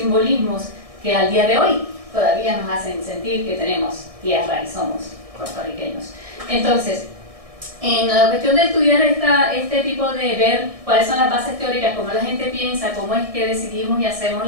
que al día de hoy todavía nos hacen sentir que tenemos tierra y somos puertorriqueños. Entonces, en la cuestión de estudiar este tipo de ver cuáles son las bases teóricas, cómo la gente piensa, cómo es que decidimos y hacemos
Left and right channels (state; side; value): late; left; 1.6 ms